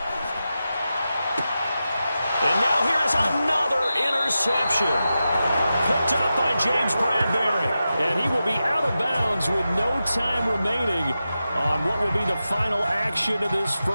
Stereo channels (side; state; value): both; inverted; correlation -0.91